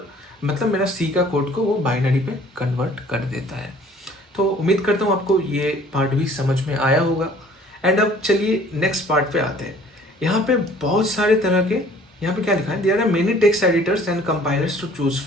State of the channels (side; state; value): both; normal; correlation 0.54